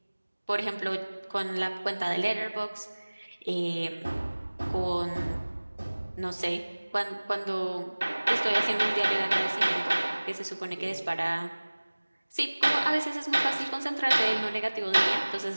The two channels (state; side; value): inverted; both; correlation -1.00